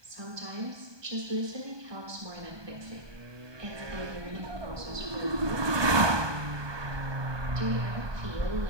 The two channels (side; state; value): left; late; 1.2 ms